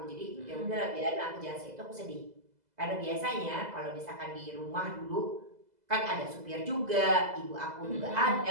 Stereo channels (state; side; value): late; left; 2.0 ms